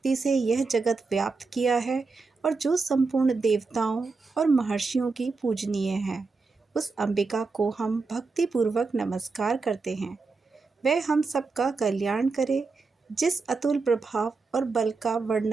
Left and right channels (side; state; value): left; quieter; 4.2 dB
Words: से यह जगत व्याप्त किया है और जो संपूर्ण देवताओं और महर्षियों की पूजनीय है, उस अंबिका को हम भक्तिपूर्वक नमस्कार करते हैं। वह हम सबका कल्याण करे। जिस अतुल प्रभाव और बल का